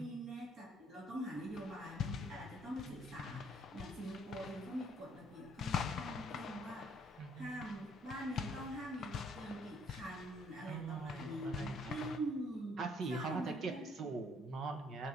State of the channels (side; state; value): both; normal; correlation 0.64